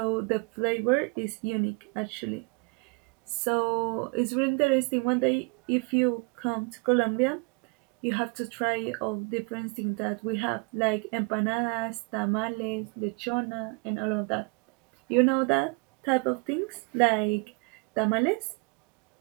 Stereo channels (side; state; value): left; quieter; 30.7 dB